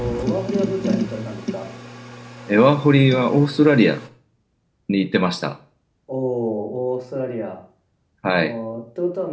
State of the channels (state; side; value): identical; both; correlation 1.00